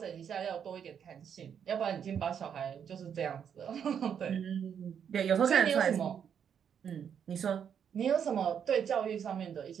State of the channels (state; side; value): quieter; left; 8.0 dB